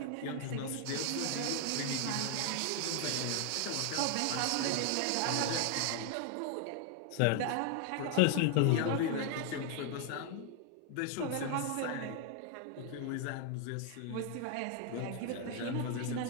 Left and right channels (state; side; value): different; both; correlation 0.00